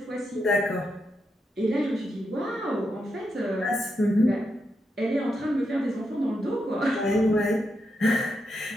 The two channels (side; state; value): both; normal; correlation 0.84